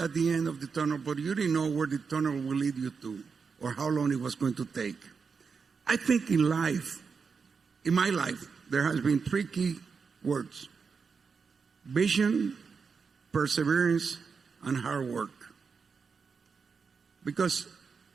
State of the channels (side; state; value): left; quieter; 5.5 dB